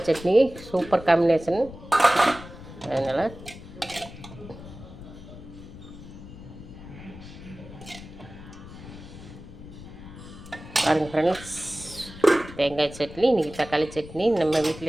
சட்னி சூப்பர் காம்பினேஷன். அதனால் பாருங்கள் ஃப்ரெண்ட்ஸ், தேங்காய் சட்னி, இன்றைக்கி தக்காளி சட்னி நம்ம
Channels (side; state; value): left; noise; rumble, 15 dB below the sound